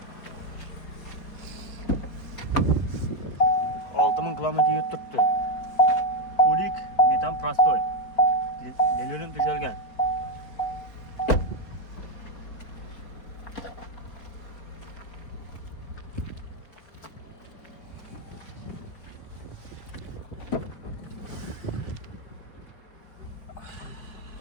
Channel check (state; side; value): late; right; 4.6 ms